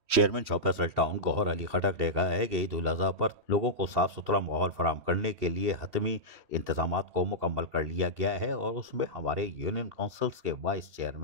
Chairman shop Faisal town گوہر علی خٹک نے کہا ہے کہ عید الاضحیٰ پر لوگوں کو صاف ستھرا ماحول فراہم کرنے کے لیے حتمی انتظامات کو مکمل کر لیا گیا ہے، اور اس میں ہمارے یونین کونسلز کے وائس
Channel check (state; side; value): late; left; 2.7 ms